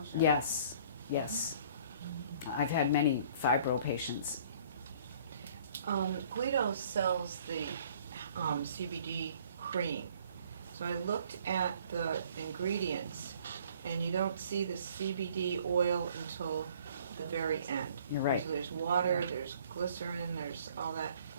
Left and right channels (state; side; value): inverted; both; correlation -0.56